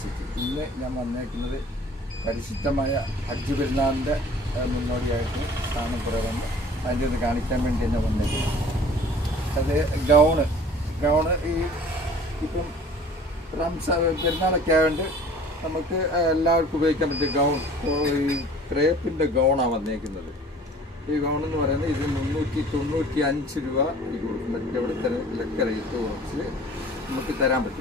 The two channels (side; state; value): both; normal; correlation 0.48